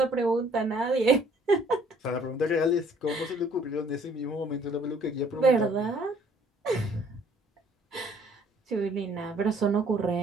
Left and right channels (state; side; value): normal; both; correlation 0.60